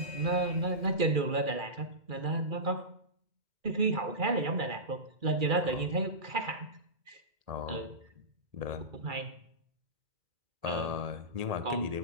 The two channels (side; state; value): left; late; 2.3 ms